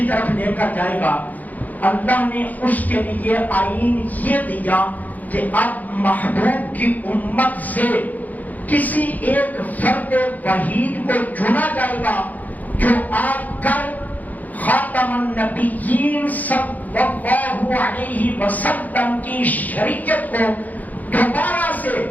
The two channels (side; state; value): right; late; 0.080 ms